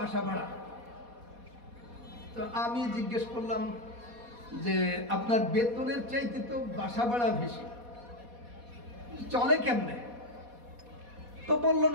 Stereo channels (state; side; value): late; left; 4.2 ms